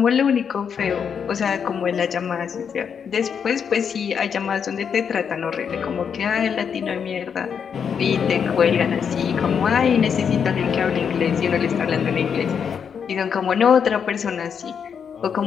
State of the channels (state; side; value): quieter; right; 7.1 dB